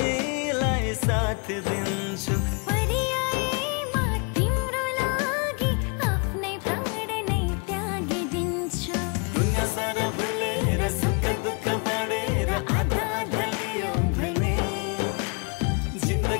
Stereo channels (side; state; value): right; quieter; 34.5 dB